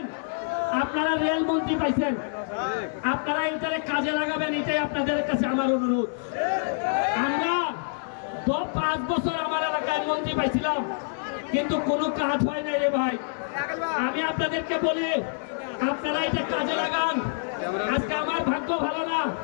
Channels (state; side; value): silent; right; digital silence